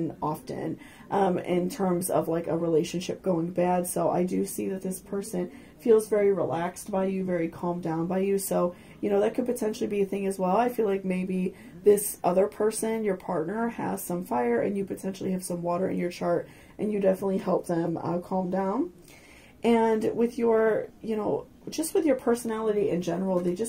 often in terms of like a relationship going bad. So I do see that this person feels very relaxed by you, very calmed down by you. So, you know, that could potentially be a thing as well. I feel like maybe this other person, your partner, has some fire and you potentially have some water in your chart, and you definitely help them calm down. And with your, you know, just with your personality in general, they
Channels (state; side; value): identical; both; correlation 1.00